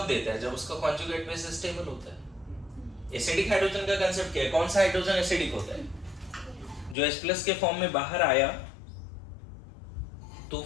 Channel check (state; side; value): drops out; right; at 7.0 s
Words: देता है, जब उसका कॉन्जुगेट बेस स्टेबल होता है। एसिडिक हाइड्रोजन का कांसेप्ट क्या है, कौन सा हाइड्रोजन एसिडिक होता है, जो H+ के फॉर्म में बाहर आया तो